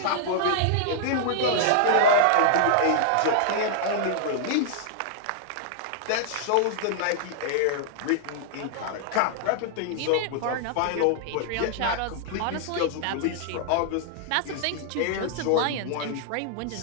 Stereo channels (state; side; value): different; both; correlation -0.01